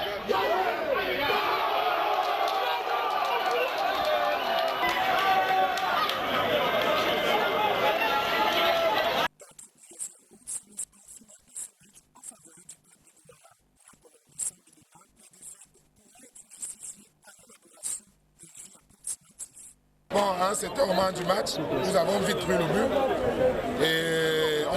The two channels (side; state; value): both; identical; correlation 1.00